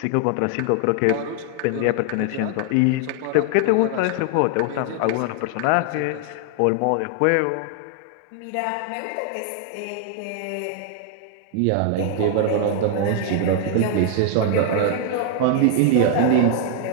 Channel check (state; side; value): different; both; correlation 0.00